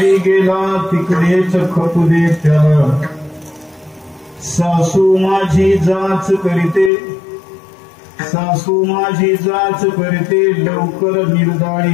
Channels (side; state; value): right; drops out; at 6.9 s